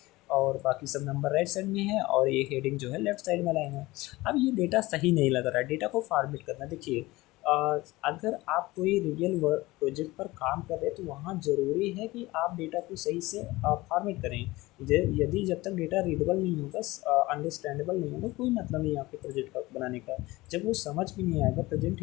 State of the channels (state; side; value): quieter; right; 20.0 dB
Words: और बाकी सब नंबर राइट साइड में है, और ये हेडिंग जो है लेफ्ट साइड में लाइन है। अब ये डेटा सही नहीं लग रहा है, डेटा को फॉर्मेट करना। देखिए अगर आप कोई रियल वर्क प्रोजेक्ट पर काम कर रहे हैं तो वहाँ ज़रूरी है कि आप डेटा को सही से फॉर्मेट करें। यदि जब तक डेटा रीडेबल नहीं होगा, अंडरस्टैंडेबल नहीं होगा, कोई मतलब नहीं आपके प्रोजेक्ट का बनाने का। जब वो समझ भी नहीं आएगा, प्रेजेंट